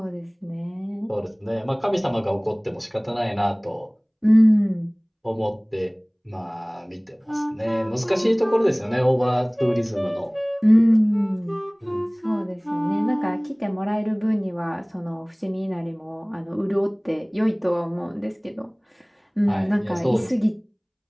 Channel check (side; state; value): both; identical; correlation 1.00